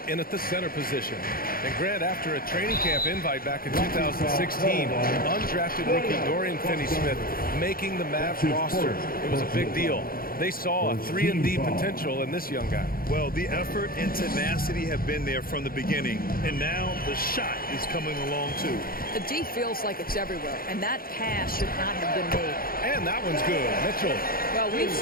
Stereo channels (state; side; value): late; right; 0.42 ms